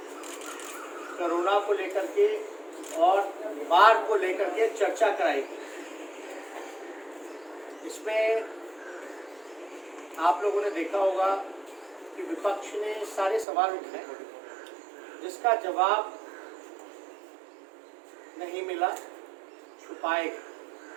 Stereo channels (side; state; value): left; drops out; at 13.5 s